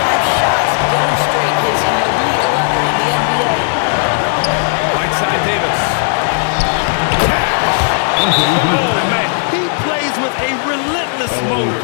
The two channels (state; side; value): silent; right; digital silence